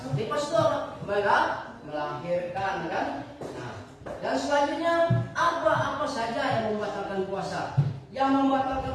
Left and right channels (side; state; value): both; identical; correlation 1.00